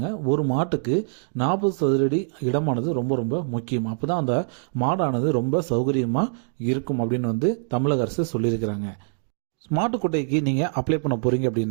ஒரு மாட்டுக்கு 40 சதுரடி இடமானது ரொம்ப ரொம்ப முக்கியம். அப்பதான் அந்த மாடானது ரொம்ப சௌகரியமா இருக்கும் அப்படின்னு தமிழக அரசு சொல்லியிருக்கிறாங்க. மாட்டுக்கொட்டைக்கு நீங்கள் அப்ளை பண்ண போகிறீங்க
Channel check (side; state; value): left; silent; 62 dB below the other